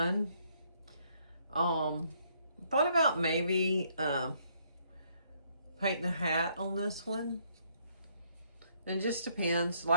Thought about maybe painting a hat on this one. It just depends.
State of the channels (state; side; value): inverted; both; correlation -0.68